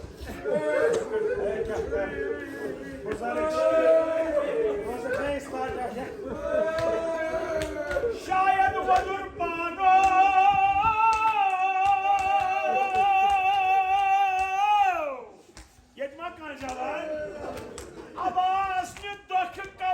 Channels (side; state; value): both; identical; correlation 1.00